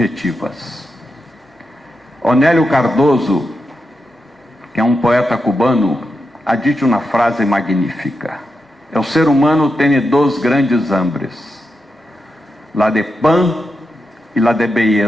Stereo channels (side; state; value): both; normal; correlation 0.87